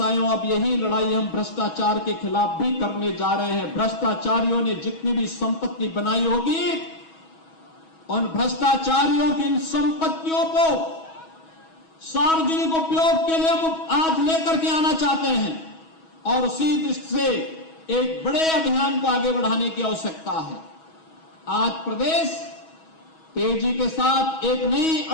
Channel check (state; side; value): late; right; 6.2 ms